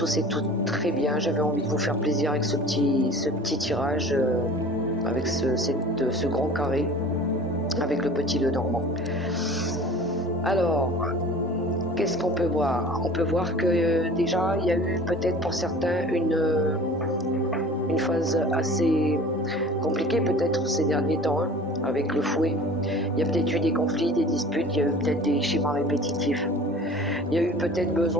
et toutes très bien. J'avais envie de vous faire plaisir avec ce petit tirage, avec ce grand carré, avec le petit Lenormand. Alors, qu'est-ce qu'on peut voir? On peut voir que déjà, il y a eu peut-être pour certains une phase assez compliquée peut-être ces derniers temps, hein, avec le fouet. Il y a peut-être eu des conflits, des disputes, il y a eu peut-être des schémas répétitifs. Il y a eu peut-être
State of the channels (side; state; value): both; normal; correlation 0.43